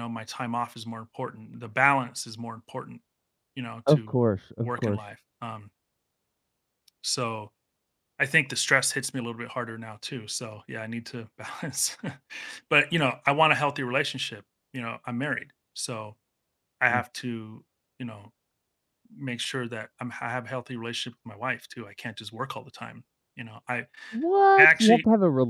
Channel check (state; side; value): identical; both; correlation 1.00